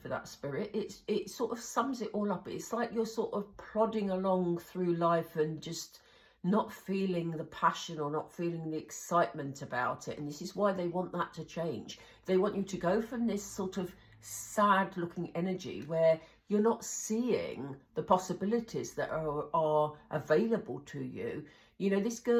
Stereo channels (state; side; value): identical; both; correlation 1.00